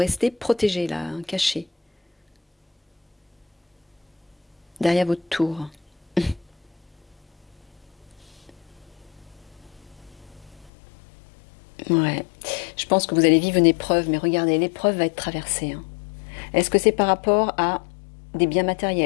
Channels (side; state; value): right; drops out; at 10.7 s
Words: protégé, là, hein, caché. Derrière votre tour. Ouais, je pense que vous allez vivre une épreuve, mais regardez, l'épreuve va être traversée. Hein. Est-ce que c'est par rapport à des biens